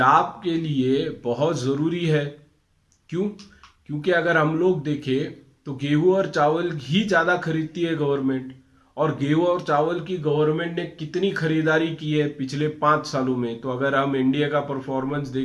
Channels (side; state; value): both; identical; correlation 1.00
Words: के लिए बहुत ज़रूरी है। क्यों? क्योंकि अगर हम लोग देखें तो गेहूं और चावल ही ज़्यादा खरीदती है गवर्नमेंट, और गेहूं और चावल की गवर्नमेंट ने कितनी खरीदारी की है पिछले 5 सालों में। तो अगर हम इंडिया का परफॉर्मेंस